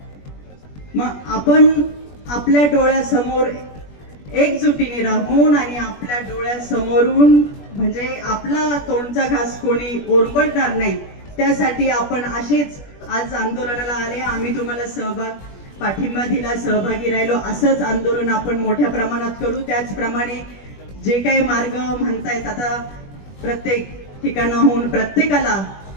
मग आपण आपल्या डोळ्यासमोर एकजुटीने राहून आणि आपल्या डोळ्यासमोरून म्हणजे आपला तोंडचा घास कोणी ओरबडणार नाही, त्यासाठी आपण असेच आज आंदोलनाला आले. आम्ही तुम्हाला पाठिंबा दिला, सहभागी राहिलो. असंच आंदोलन आपण मोठ्या प्रमाणात करू. त्याचप्रमाणे जे काही मार्ग म्हणतायत, आता प्रत्येक ठिकाणाहून प्रत्येकाला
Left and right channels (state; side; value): late; right; 21 ms